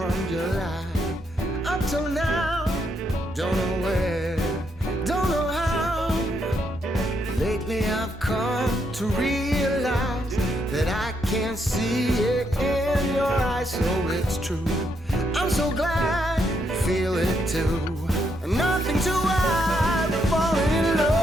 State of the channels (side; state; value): both; normal; correlation 0.77